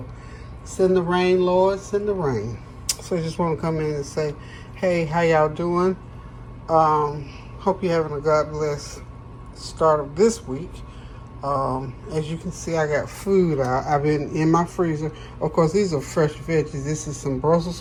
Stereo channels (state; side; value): identical; both; correlation 1.00